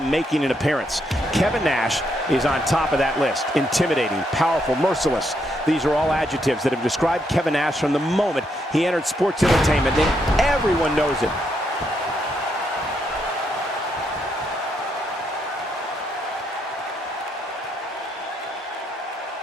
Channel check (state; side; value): normal; both; correlation 0.77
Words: an appearance. Kevin Nash is on top of that list. Intimidating, powerful, merciless. These are all adjectives that have described Kevin Nash from the moment he entered sports entertainment, and everyone knows it.